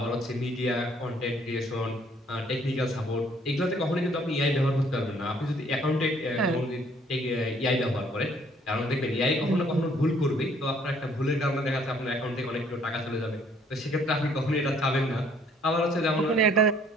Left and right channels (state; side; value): normal; both; correlation 0.62